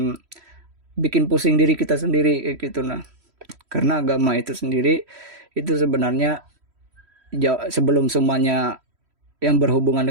bikin pusing diri kita sendiri kayak gitu. Nah, karena agama itu sendiri itu sebenarnya sebelum semuanya yang berhubungan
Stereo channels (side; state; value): left; late; 3.1 ms